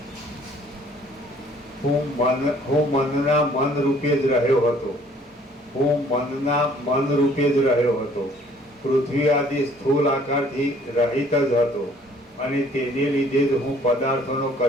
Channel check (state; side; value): normal; both; correlation 0.58